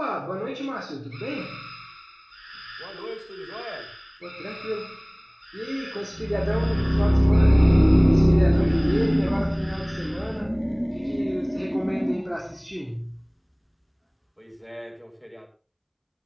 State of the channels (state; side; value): identical; both; correlation 1.00